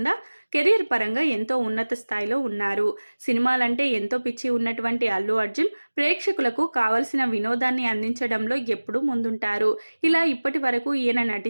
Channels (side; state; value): both; inverted; correlation -1.00